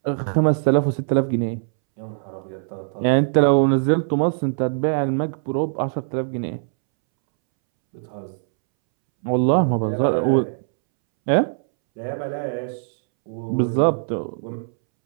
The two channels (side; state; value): left; silent; 64 dB below the other